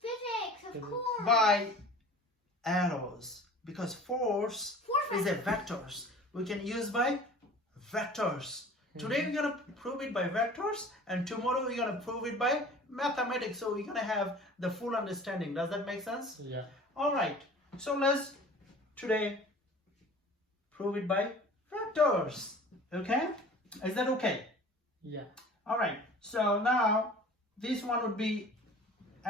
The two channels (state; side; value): normal; both; correlation 0.44